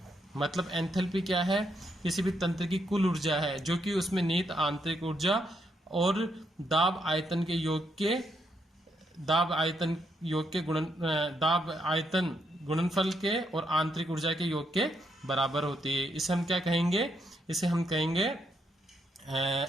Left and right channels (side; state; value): both; normal; correlation 0.77